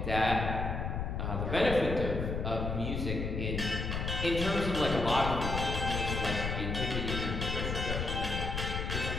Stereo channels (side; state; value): left; noise; rumble, 2 dB below the sound